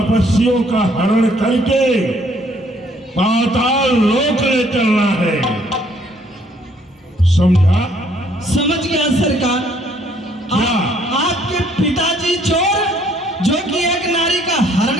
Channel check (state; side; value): normal; both; correlation 0.64